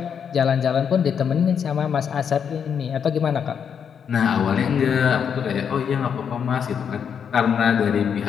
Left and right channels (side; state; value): right; quieter; 7.4 dB